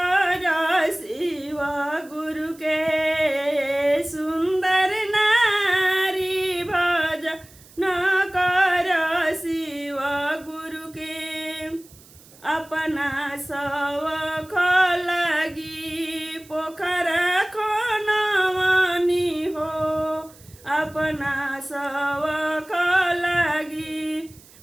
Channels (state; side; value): noise; right; hiss, 24 dB below the sound